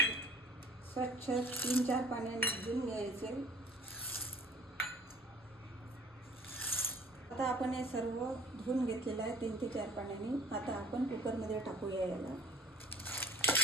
स्वच्छ 3-4 पाण्याने धुवून घ्यायचे. आता आपण हे सर्व धुवून घेतलेलं आहे 3 ते 4 पाण्याने. आता आपण कुकरमध्ये टाकूया याला.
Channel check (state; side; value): normal; both; correlation 0.46